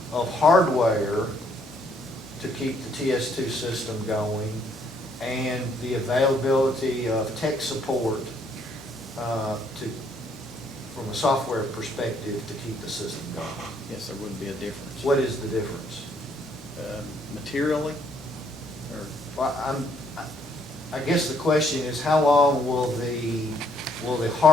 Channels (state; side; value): normal; both; correlation 0.68